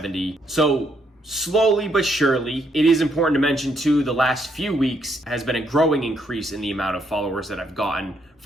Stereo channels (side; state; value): both; normal; correlation 0.74